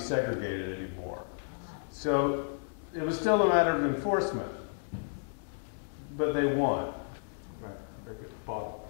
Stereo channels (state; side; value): silent; right; digital silence